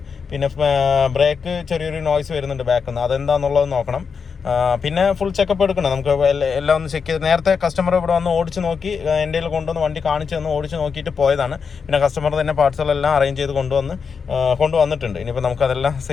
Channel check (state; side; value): quieter; right; 5.8 dB